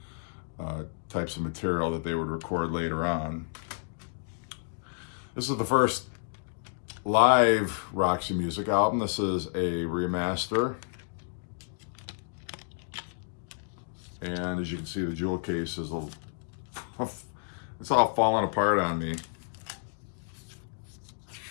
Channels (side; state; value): right; silent; digital silence